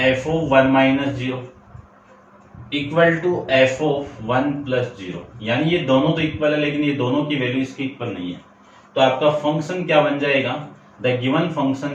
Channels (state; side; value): identical; both; correlation 1.00